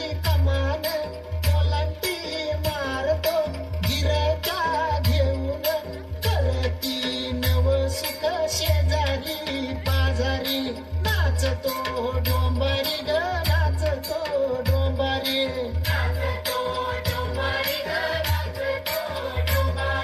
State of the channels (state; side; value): identical; both; correlation 1.00